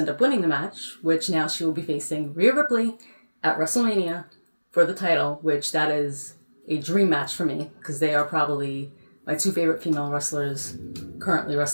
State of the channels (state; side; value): inverted; both; correlation -1.00